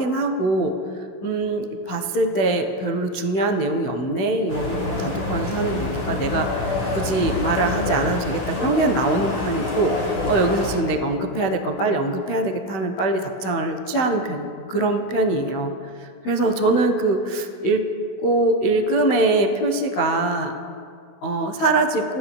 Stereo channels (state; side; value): late; right; 16 ms